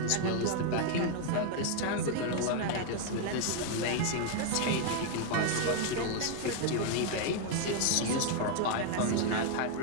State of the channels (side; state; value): both; different; correlation 0.00